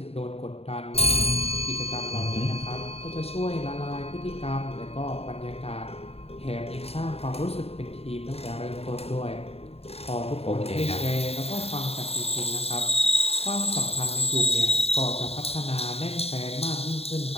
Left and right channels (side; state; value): right; late; 0.29 ms